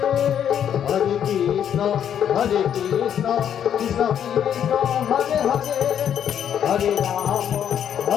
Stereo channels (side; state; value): right; quieter; 9.2 dB